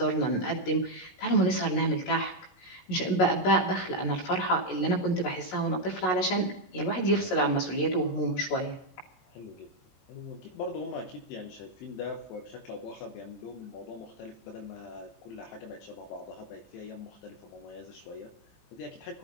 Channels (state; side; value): late; right; 20 ms